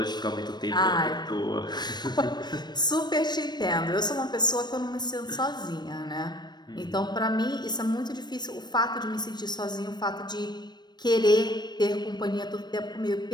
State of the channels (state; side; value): late; right; 0.21 ms